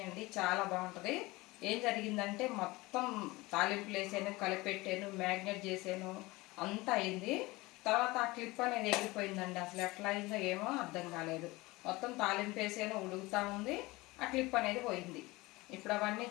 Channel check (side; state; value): right; quieter; 21.6 dB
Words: అండి, చాలా బాగుంటుంది. ఏం జరిగిందంటే మొత్తం తాలింపులు వేసాను, కలిపెట్టాను, మ్యాగ్నేట్ చేసాను, అంతా అయింది. తర్వాత ఆ క్లిప్ అనేది ఎగిరిపోయిందండి. అసలు ఎట్లా అయిందో ఏమో అర్థం కాలేదు. మొత్తం తాలింపు వేసాను, ఉడుకుతూ ఉంది, ఆ క్లిప్ అనేది పోయింది. ఇప్పుడు అవన్నీ